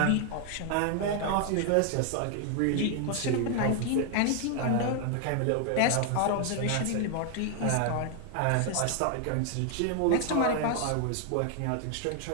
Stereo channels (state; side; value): different; both; correlation 0.00